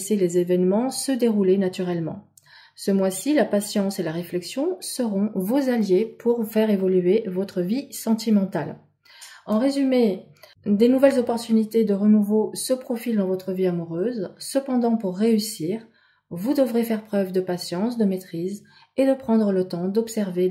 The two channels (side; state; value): both; identical; correlation 1.00